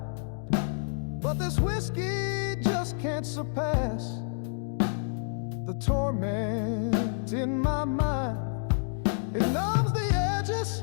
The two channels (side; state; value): right; silent; digital silence